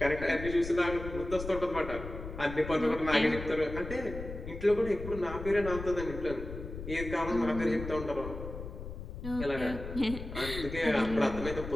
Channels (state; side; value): noise; left; rumble, 9 dB below the sound